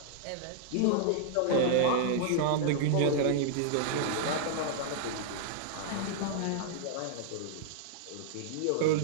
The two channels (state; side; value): different; both; correlation -0.01